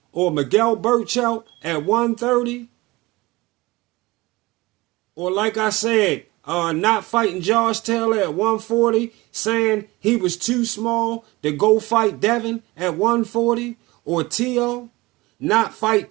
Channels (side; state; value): left; quieter; 21.3 dB